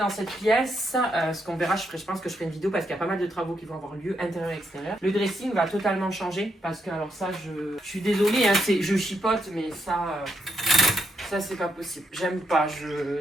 cette pièce, ce qu'on verra, je pense que je ferai une vidéo parce qu'il y a pas mal de travaux qui vont avoir lieu, intérieur et extérieur. Le dressing va totalement changer parce que, alors ça, je suis désolée, hein, je chipote, mais ça c'est pas possible. J'aime pas,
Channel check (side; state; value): both; normal; correlation 0.78